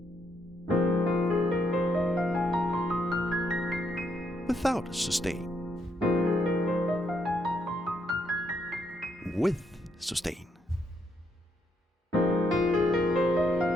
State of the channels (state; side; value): normal; both; correlation 0.75